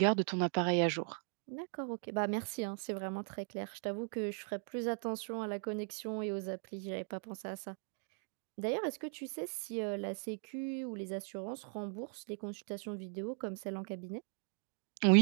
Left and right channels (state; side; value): silent; left; 52 dB below the other